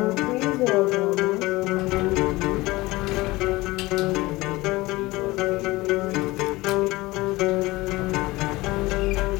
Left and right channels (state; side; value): quieter; right; 20.5 dB